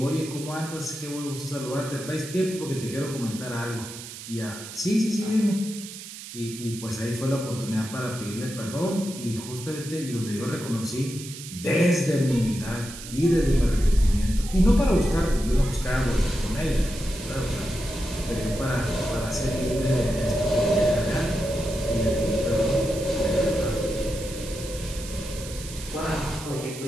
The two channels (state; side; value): noise; right; hiss, 12 dB below the sound